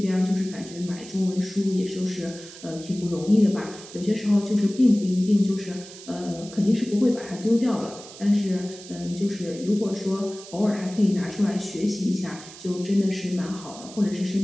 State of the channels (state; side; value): noise; right; hiss, 16 dB below the sound